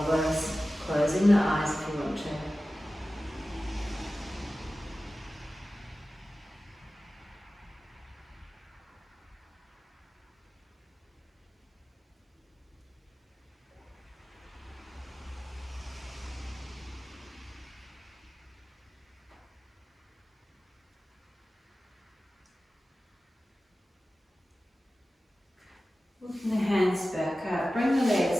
closing the eyes if you want to. Walking the hands back up, bring the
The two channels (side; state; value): both; normal; correlation 0.95